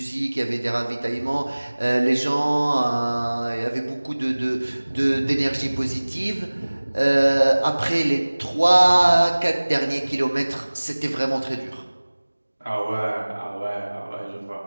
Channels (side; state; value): both; inverted; correlation -1.00